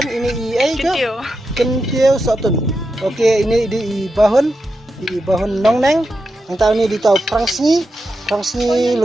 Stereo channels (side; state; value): both; normal; correlation 0.87